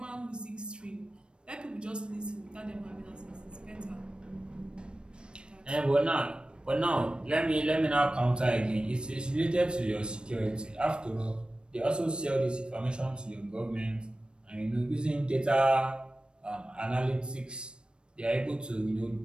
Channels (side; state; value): left; late; 0.054 ms